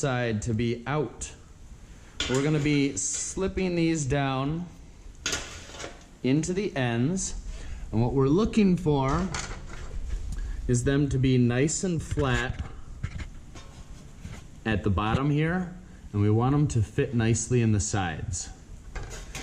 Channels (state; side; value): identical; both; correlation 1.00